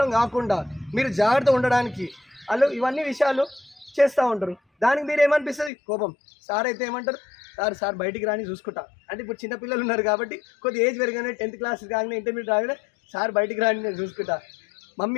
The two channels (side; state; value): right; drops out; at 5.7 s